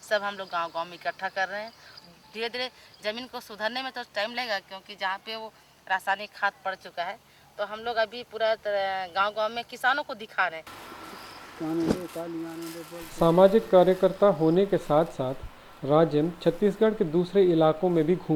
सब हम लोग गांव-गांव में इकट्ठा कर रहे हैं। धीरे धीरे ज़मीन को सुधारने में तो टाइम लगेगा, क्योंकि जहाँ पे वो रासायनिक खाद पड़ चुका है, तो हम लोग अभी पूरा गांव-गांव में किसानों को दिखा रहे हैं। सामाजिक कार्यकर्ता होने के साथ साथ राजिम छत्तीसगढ़ के दूसरे इलाकों में भी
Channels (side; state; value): both; identical; correlation 1.00